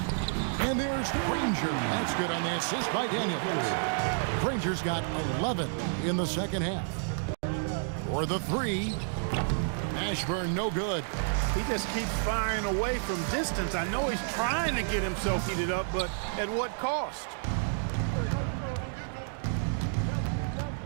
And there's Granger. That's good on the assist by Daniels. Granger's got 11 in the second half. For the 3. Ashburn no good. He just keeps firing away from distance. I know he's trying to get himself heated up, but at what cost?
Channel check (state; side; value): silent; left; digital silence